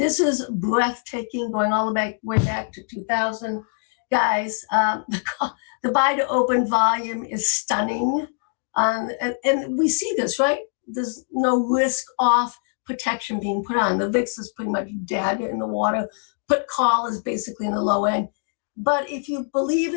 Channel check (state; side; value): silent; right; digital silence